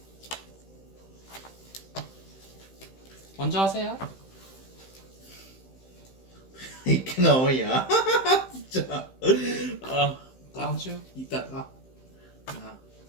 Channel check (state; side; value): late; right; 15 ms